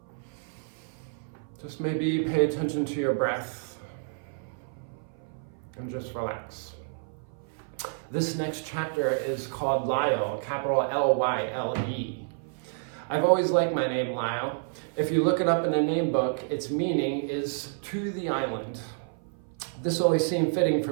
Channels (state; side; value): silent; left; 56 dB below the other